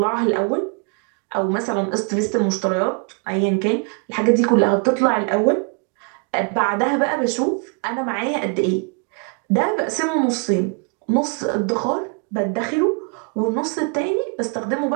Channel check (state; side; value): quieter; left; 36.6 dB